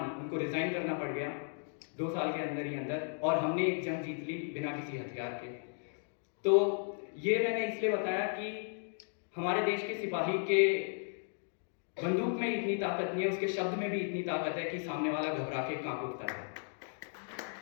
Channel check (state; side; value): silent; right; 54 dB below the other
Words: उनको रिजाइन करना पड़ गया 2 साल के अंदर ही अंदर, और हमने एक जंग जीत ली बिना किसी हथियार के। तो ये मैंने इसलिए बताया कि हमारे देश के सिपाही के बंदूक में इतनी ताकत नहीं है, उसके शब्द में भी इतनी ताकत है कि सामने वाला घबरा के कांप उठता है।